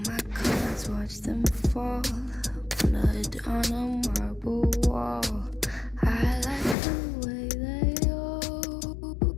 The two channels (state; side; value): drops out; right; at 6.8 s